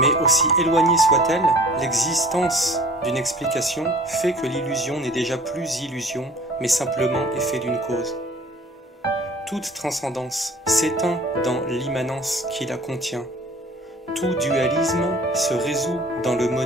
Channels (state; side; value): normal; both; correlation 0.48